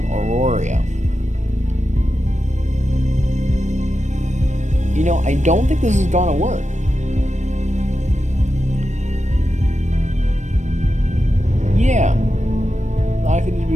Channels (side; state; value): left; late; 0.34 ms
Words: Aurora. You know, I don't think this is gonna work. Yeah, likely to